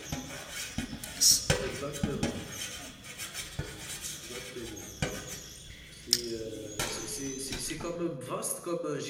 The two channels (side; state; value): both; identical; correlation 1.00